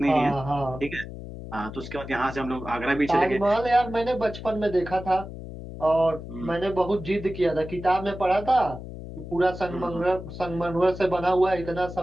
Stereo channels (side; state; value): left; noise; hum, 11 dB below the sound